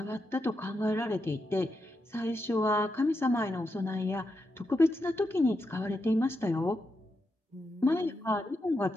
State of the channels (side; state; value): both; normal; correlation 0.85